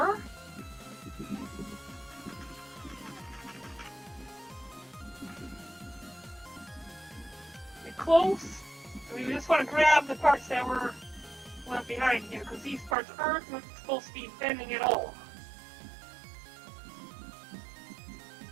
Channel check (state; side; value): drops out; left; at 13.0 s